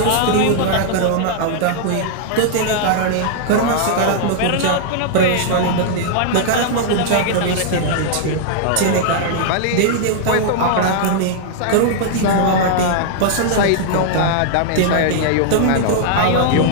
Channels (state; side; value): different; both; correlation -0.01